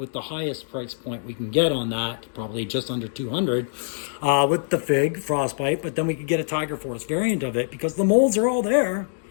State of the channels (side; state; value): right; silent; digital silence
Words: the highest price point we can get on that, probably just under 200, with the Fig Frostbite. But then we could get a Tiger Force variant of it because the molds are all there.